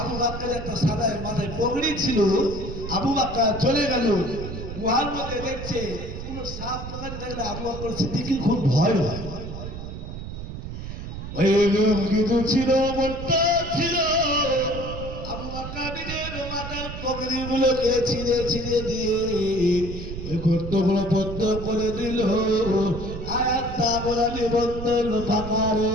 বকরের একটা সাদা মাথায় পগড়ি ছিল। আবু বকর চলে গেল, গুহার মধ্যে দেখছে কোনো সাপ লাগাতে থাকলে আবু বকর সিদ্দিকের খুব ভয় হয়। ওই কিছু ছিল, মনটা ছিল। আবু বকর নিজের মাথার পগড়ি গুলোকে ছিঁড়ে ছিঁড়ে দিয়ে ওই গর্তগুলো বন্ধ করে দিল। আর একটা বলা নিবন্ধন ফাঁকা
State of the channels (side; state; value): right; noise; rumble, 8 dB below the sound